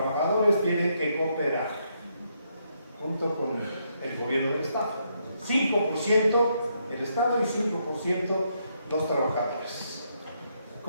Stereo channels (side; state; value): both; inverted; correlation -0.76